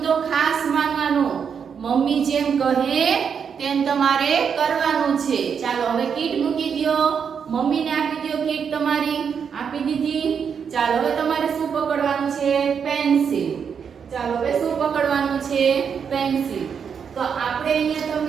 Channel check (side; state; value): left; quieter; 6.9 dB